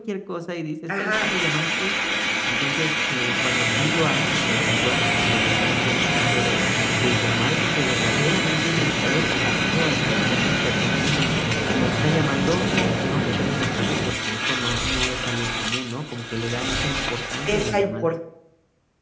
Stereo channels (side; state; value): both; identical; correlation 1.00